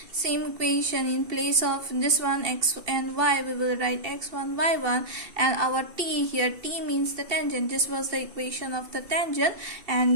same equation in place of this one x and y, we will write x1 y1, and our t here, t means the tangent. This was the equation of the tangent,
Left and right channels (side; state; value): left; late; 2.7 ms